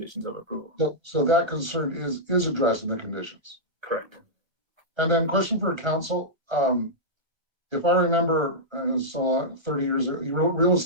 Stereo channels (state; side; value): late; left; 1.2 ms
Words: of approval. So that concern is addressed in the conditions. Correct. And then question for council. If I remember, so 30 years ago, you wrote real